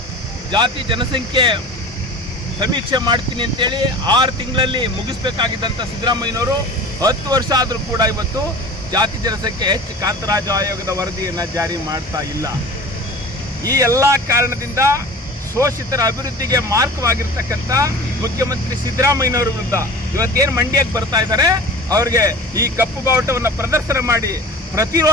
ಜಾತಿ ಜನಸಂಖ್ಯೆ ಸಮೀಕ್ಷೆ ಮಾಡ್ತೀನಿ ಅಂತೇಳಿ 6 ತಿಂಗಳಲ್ಲಿ ಮುಗಿಸ್ಬೇಕಾಗಿದ್ದಂಥ ಸಿದ್ದರಾಮಯ್ಯನವರು 10 ವರ್ಷ ಆದರೂ ಕೂಡ ಇವತ್ತು ಜಾತಿ ಜನಸಂಖ್ಯೆ ಹೆಚ್ಚು ಕಾಂತರಾಜು ಆಯೋಗದ ವರದಿಯನ್ನು ಜಾರಿ ಮಾಡ್ತಾ ಇಲ್ಲ. ಈ ಎಲ್ಲ ಕಾರಣದಿಂದ ಶೋಷಿತರ ಅಭಿವೃದ್ಧಿಗೆ ಮಾರ್ಗವಾಗಿರ್ತಕ್ಕಂಥ ಮುಖ್ಯಮಂತ್ರಿ ಸಿದ್ದರಾಮಯ್ಯನವರ ವಿರುದ್ಧ ಇವತ್ತೇನು ಮಂಡ್ಯಕ್ಕೆ ಬರ್ತಾ ಇದ್ದಾರೆ, ಅವ್ರಿಗೆ ಈ ಕಪ್ಪು ಬಾವುಟವನ್ನು ಪ್ರದರ್ಶನ ಮಾಡಿ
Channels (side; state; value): both; normal; correlation 0.38